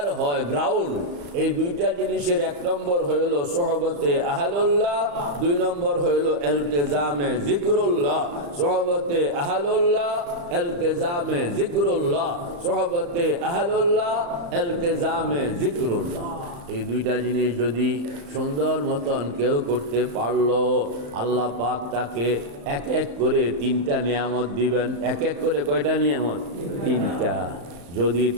হয় গ্রাউন্ড, এই দুইটা জিনিসের এক নম্বর হইল সোহবতে আহলুল্লাহ, দুই নম্বর হইল ইলতিজামে জিকরুল্লাহ। সোহবতে আহলুল্লাহ, ইলতিজামে জিকরুল্লাহ, সোহবতে আহলুল্লাহ, ইলতিজামে জিকরুল্লাহ। এই দুইটা জিনিস যদি সুন্দর মতন কেউ করতে পারলো, আল্লাহ পাক তাকে এক এক করে তিনটা নিয়ামত দিবেন। এক এক করে কয়টা নিয়ামত? তিনটা। যদি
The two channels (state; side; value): late; left; 35 ms